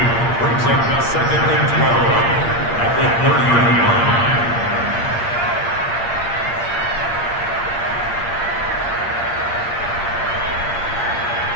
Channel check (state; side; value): late; right; 8.6 ms